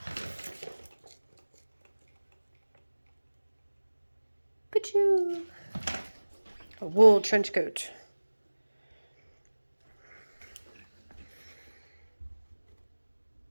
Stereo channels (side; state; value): both; inverted; correlation -1.00